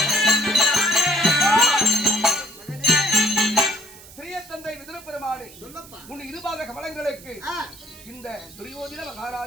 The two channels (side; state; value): right; noise; hiss, 19 dB below the sound